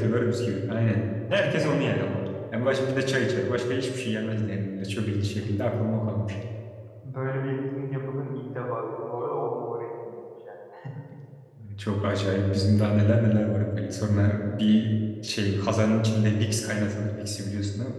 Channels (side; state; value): both; identical; correlation 1.00